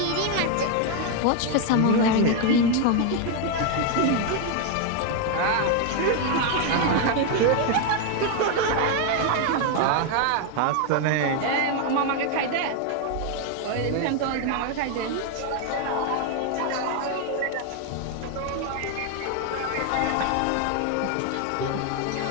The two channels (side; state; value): both; different; correlation 0.01